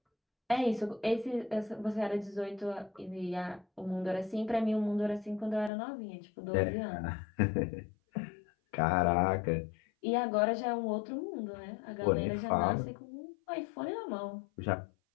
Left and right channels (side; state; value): right; drops out; at 5.7 s